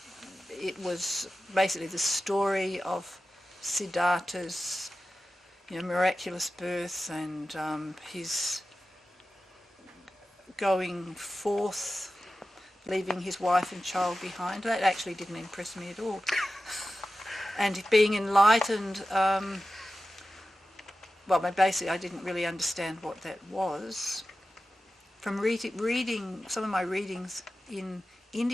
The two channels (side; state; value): both; normal; correlation 0.94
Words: it was basically the story of Siddhartha's, miraculous birth and his going forth, leaving his wife and child behind. That actually didn't impress me at all. And being enlightened, basically I didn't really understand what that was. From reading some of my readings in